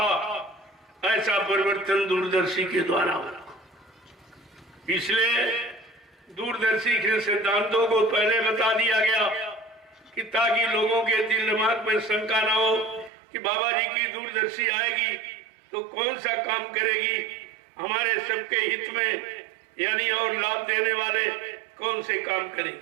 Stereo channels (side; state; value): left; drops out; at 13.1 s